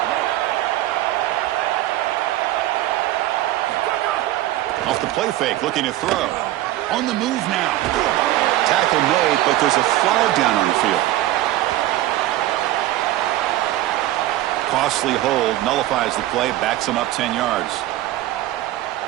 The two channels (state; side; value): quieter; left; 15.1 dB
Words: Off the play fake, looking to throw. On the move now. Tackle made, but there's a flag down on the field. Costly hold, nullifies the play, backs him up 10 yards.